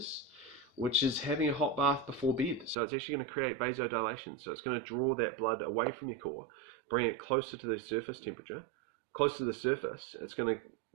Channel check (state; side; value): drops out; left; at 2.8 s